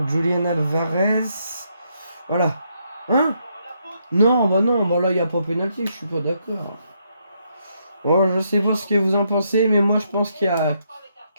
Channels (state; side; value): inverted; both; correlation -0.76